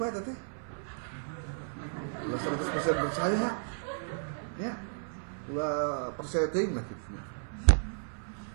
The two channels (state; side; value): silent; left; 55 dB below the other